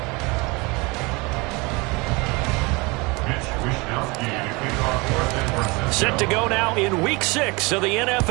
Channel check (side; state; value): left; quieter; 26.4 dB